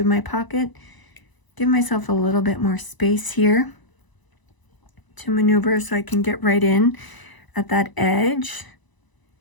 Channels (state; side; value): late; right; 1.0 ms